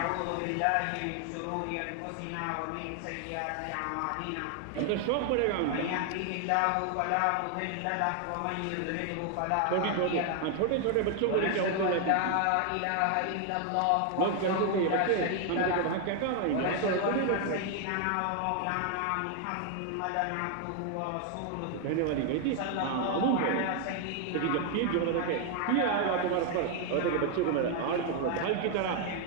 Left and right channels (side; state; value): both; different; correlation 0.00